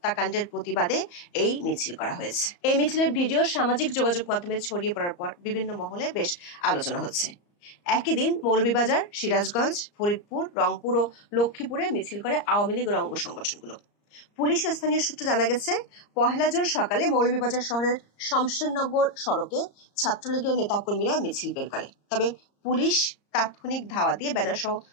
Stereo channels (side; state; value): right; late; 34 ms